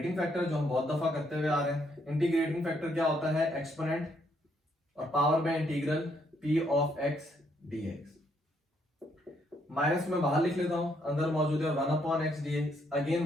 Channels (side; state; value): both; normal; correlation 0.72